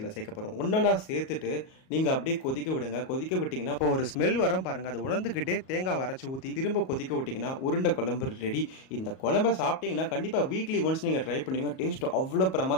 சேர்க்க போகிறோம். ஒன்றா சேர்த்துட்டு நீங்கள் அப்படியே கொதிக்க விடுங்க. கொதிக்க விட்டிங்கன்னா இப்போ ஒரு ஸ்மெல் வரும் பாருங்கள். அதை உணர்ந்துக்கிட்டே தேங்காய் அரைச்சி ஊற்றி திரும்ப கொதிக்க விட்டிங்கன்னா உருண்டை குழம்பு ரெடி. இந்த குழம்பை சாப்பிட்டீங்கன்னா கண்டிப்பாக வீக்லி ஒன்ஸ் நீங்கள் ட்ரை பண்ணுவீங்க. டேஸ்ட் அவ்வளோ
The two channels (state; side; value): late; right; 38 ms